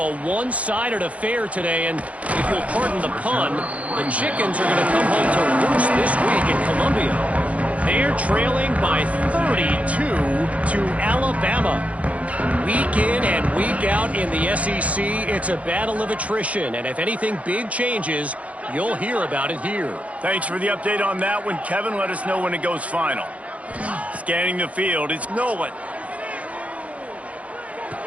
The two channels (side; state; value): left; late; 0.066 ms